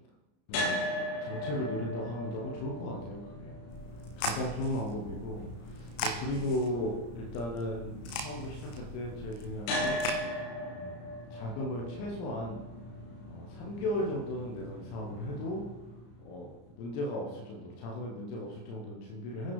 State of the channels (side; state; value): right; late; 34 ms